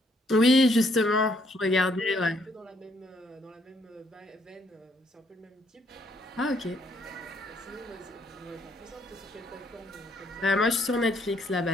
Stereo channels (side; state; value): both; normal; correlation 0.69